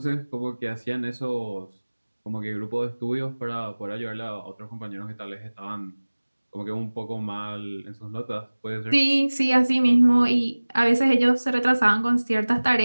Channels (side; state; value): both; inverted; correlation -1.00